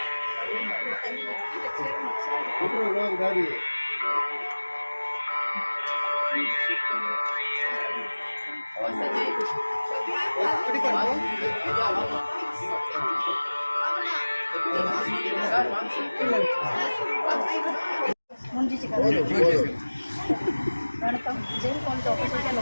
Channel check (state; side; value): inverted; both; correlation -1.00